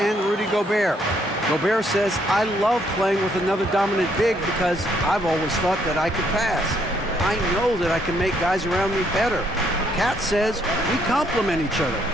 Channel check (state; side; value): normal; both; correlation 0.70